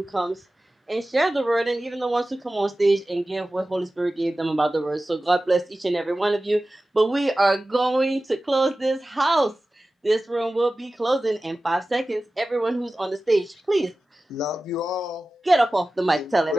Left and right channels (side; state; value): both; normal; correlation 0.96